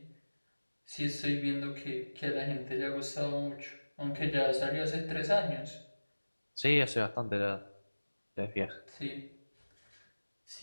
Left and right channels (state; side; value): inverted; both; correlation -1.00